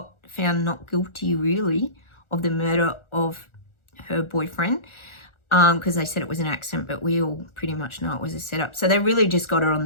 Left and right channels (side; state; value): right; late; 1.4 ms